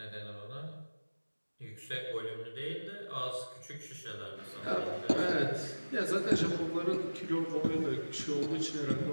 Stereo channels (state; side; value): inverted; both; correlation -1.00